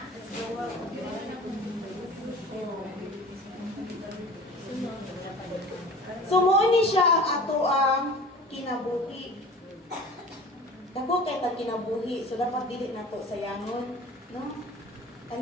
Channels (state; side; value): normal; both; correlation 0.41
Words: So, mooni siya ang ato ang kinabuhi. Dako kay tag kinabuhi, so dapat dili nato sayangon, no?